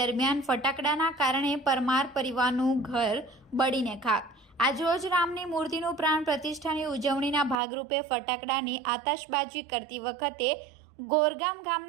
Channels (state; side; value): drops out; left; at 7.6 s